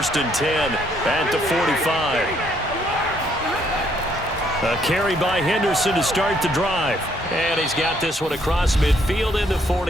and 10 at the 45. A carry by Henderson to start the drive. And he's got this one across midfield into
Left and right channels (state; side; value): normal; both; correlation 0.69